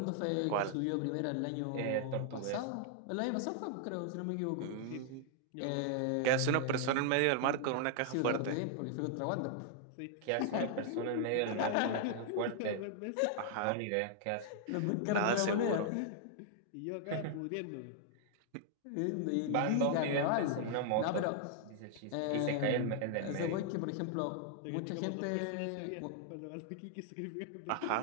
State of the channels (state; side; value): different; both; correlation 0.00